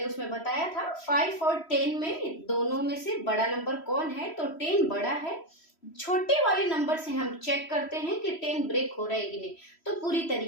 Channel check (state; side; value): late; right; 3.1 ms